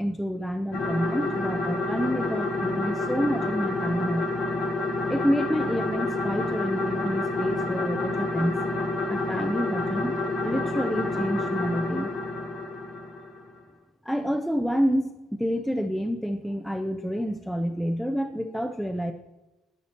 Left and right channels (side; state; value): both; normal; correlation 0.84